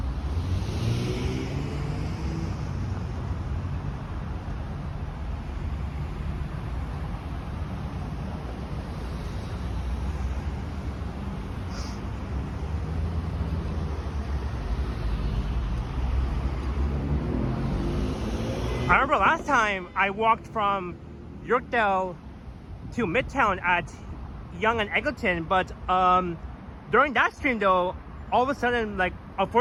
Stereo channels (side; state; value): both; identical; correlation 1.00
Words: I remember last time I walked from Yorkdale to Midtown at Yonge and Eglinton, but during that stream though, all of a sudden, like,